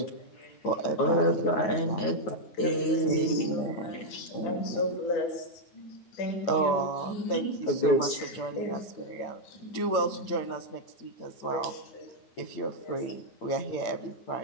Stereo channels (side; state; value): right; late; 9.4 ms